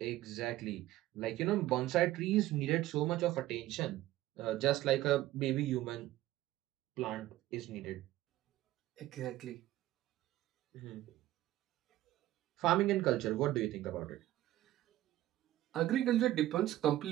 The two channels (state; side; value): quieter; left; 15.0 dB